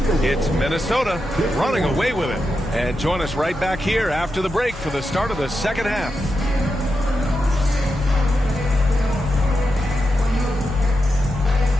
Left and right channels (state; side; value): noise; left; hum, 16 dB below the sound